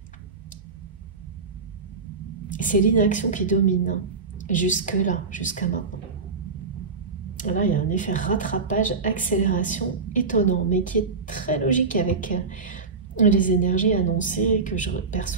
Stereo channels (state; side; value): quieter; left; 4.5 dB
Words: C'est l'inaction qui domine, hein, jusque-là, jusqu'à maintenant. Là, il y a un effet rattrapage, accélération étonnant, mais qui est très logique avec les énergies annoncées que je